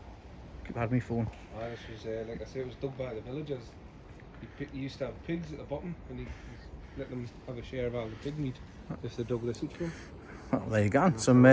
Keep had me phone. This was, like I say, it was dug by the villagers. He used to have pigs at the bottom and he let them have a share of all the pig meat if they dug this into them. Well, there you go. Some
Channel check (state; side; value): identical; both; correlation 1.00